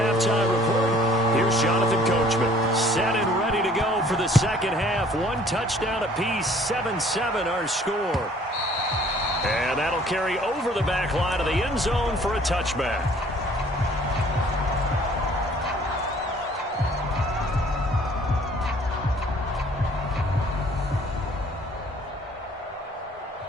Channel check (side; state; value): both; normal; correlation 0.55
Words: Report. Here's Jonathan Coachman, set and ready to go for the second half. 1 touchdown apiece, 7-7 our score. And that'll carry over the back line of the end zone for a touchback.